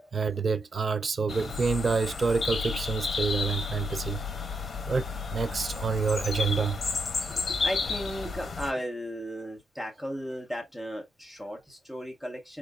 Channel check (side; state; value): both; normal; correlation 0.80